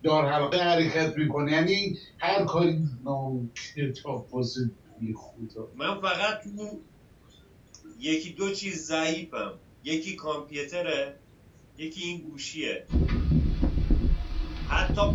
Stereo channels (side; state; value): both; identical; correlation 1.00